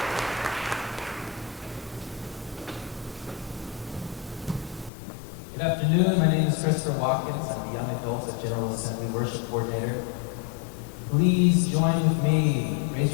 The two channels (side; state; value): right; drops out; at 4.9 s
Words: Good afternoon. My name is Christopher Watkins. I'm the Young Adults at General Assembly Worship Coordinator. Please join with me. Raise